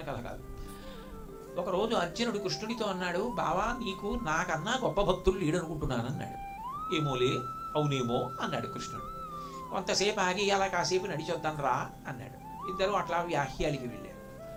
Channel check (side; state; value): both; identical; correlation 1.00